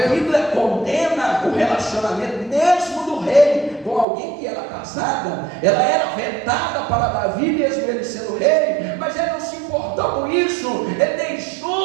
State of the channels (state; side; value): drops out; left; at 4.0 s